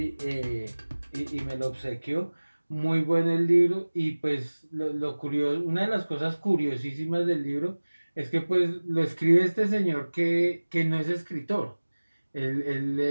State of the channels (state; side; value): inverted; both; correlation -1.00